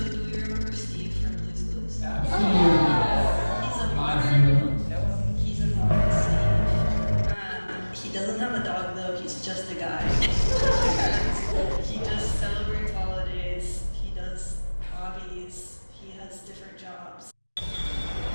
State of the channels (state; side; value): inverted; both; correlation -1.00